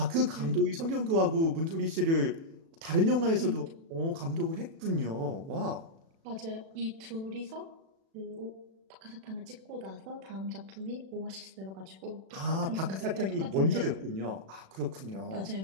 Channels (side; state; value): left; late; 36 ms